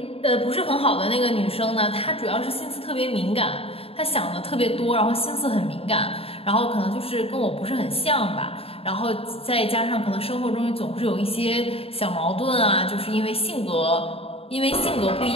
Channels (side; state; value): right; late; 0.28 ms